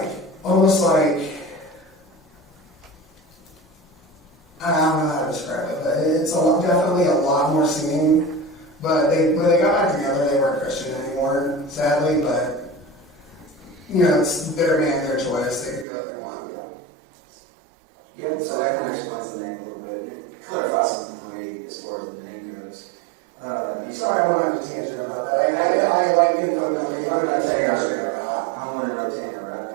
almost like, I don't know how to describe it, but it's definitely a lot more singing. But when they got back together, they weren't Christian anymore, sadly, but it's their band, their choice. They can do what they want. Yeah, so that kind of explains the name a little bit. It clarifies something for me as far as the name goes. Sorry, I went on a tangent about that. I like info dumping. I'm not Tanner. I want to know Tanner, right?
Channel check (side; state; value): left; drops out; at 15.9 s